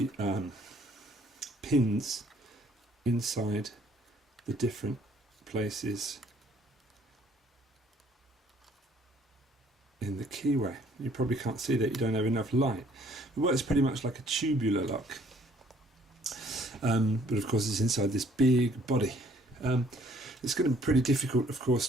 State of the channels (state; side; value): normal; both; correlation 0.61